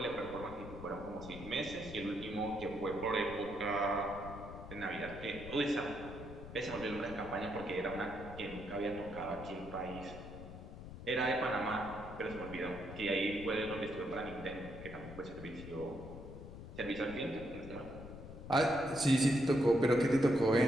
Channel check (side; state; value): left; noise; rumble, 12 dB below the sound